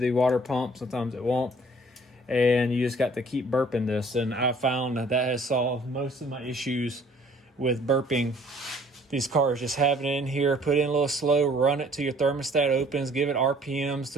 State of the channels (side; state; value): both; normal; correlation 0.56